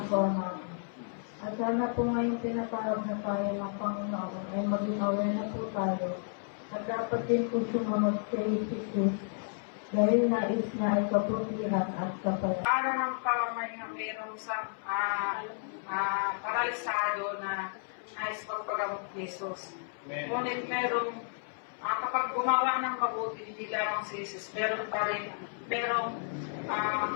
natin. At sana po ngayong tinatawag na tayo ng Panginoon ay maging aware na po tayo. At dapat din po sumunod kay Jesus dahil nais na ay kaputihan at kapayapaan. Para ng pamamahinga mayroong sa paralisado na nais pagpagamot ni Jesus. Ngunit merong kapag gumawa ng mabuti, hindi lamang si Jesus, meron pa rin, merong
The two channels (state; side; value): silent; right; 56 dB below the other